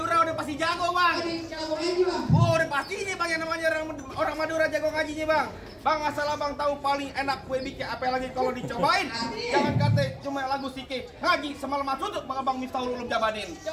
udah pasti jago bang. Jago ngaji bang. Oh, udah pastinya bang yang namanya orang Madura jago ngajinya bang. Bang, asal abang tahu paling enak kue bikin apa lagi kalau dicobain. Jangan kata cuma lagu sike ngaji semalam tutup bang Abang Miftahul Ulum jabanin.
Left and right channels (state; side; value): identical; both; correlation 1.00